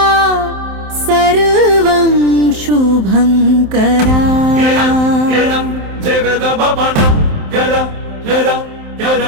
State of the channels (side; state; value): left; late; 27 ms